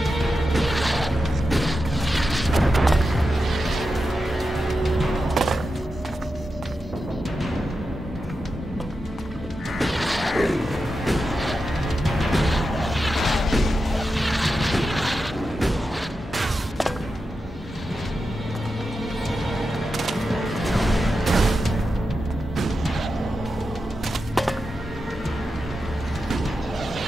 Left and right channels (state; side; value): normal; both; correlation 0.90